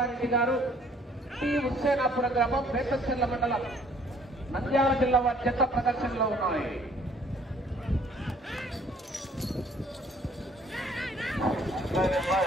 గారు, టి హుస్సేనాపురం గ్రామం, బేతంచెర్ల మండలం, నంద్యాల జిల్లా వారి జత ప్రదర్శనలో ఉన్నాయి.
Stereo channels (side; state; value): both; normal; correlation 0.59